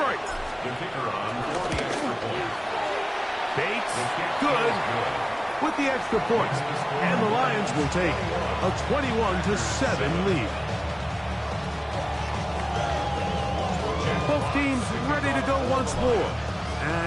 The kicker on for the extra point. Bates, good with the extra points. And the Lions will take a 21-7 lead. Both teams ready to go once more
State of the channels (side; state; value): both; identical; correlation 1.00